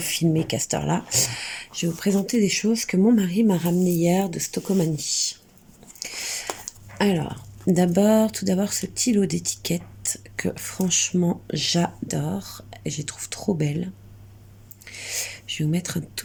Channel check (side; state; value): both; identical; correlation 1.00